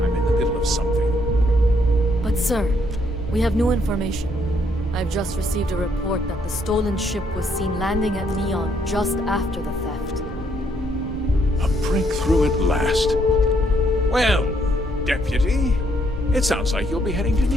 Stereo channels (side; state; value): both; normal; correlation 0.71